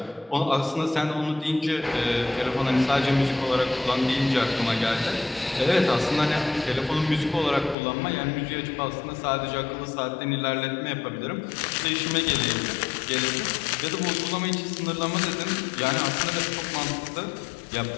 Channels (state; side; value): drops out; right; at 7.8 s